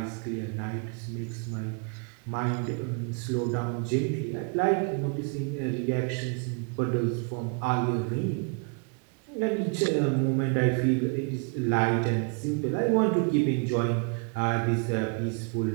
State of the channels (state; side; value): quieter; left; 36.7 dB